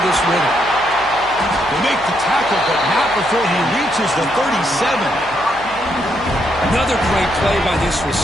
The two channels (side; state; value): left; noise; hum, 21 dB below the sound